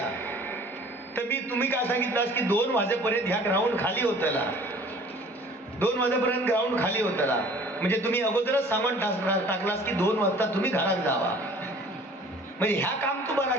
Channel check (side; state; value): both; normal; correlation 0.50